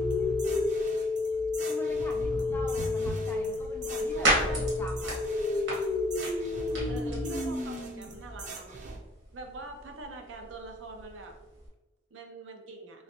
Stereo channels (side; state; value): both; normal; correlation 0.58